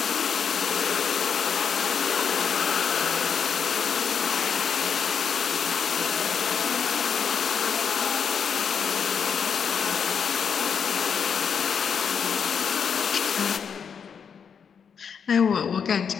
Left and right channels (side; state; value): right; quieter; 6.9 dB